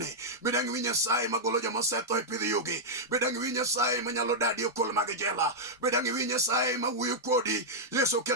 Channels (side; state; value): both; normal; correlation -0.05